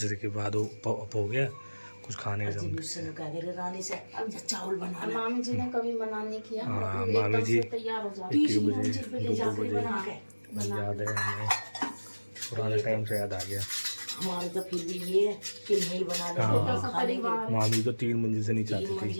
के बाद वो अप हो गया, कुछ खाने का जम। रानी से अब चावल बना ला। मामी जी ने कभी मना नहीं किया। हाँ, एकदम मामी जी से तैयार हो जाती। 1 बजे 2 बजे याद है हमें। पुराने टाइम से याद आ गया। हमारे तो फिर भी ये है कि नहीं बना ले हाँ। तो खा लेंगे। मामी तो 3 मंजिल से नीचे 3 आती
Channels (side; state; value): both; inverted; correlation -1.00